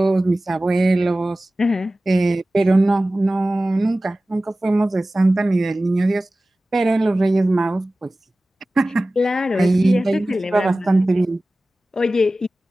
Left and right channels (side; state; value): both; normal; correlation 0.97